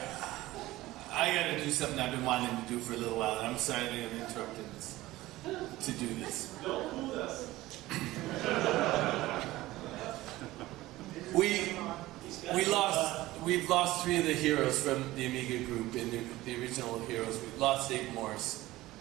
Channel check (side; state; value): left; quieter; 17.5 dB